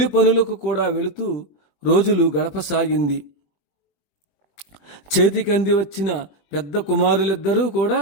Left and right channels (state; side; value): late; right; 21 ms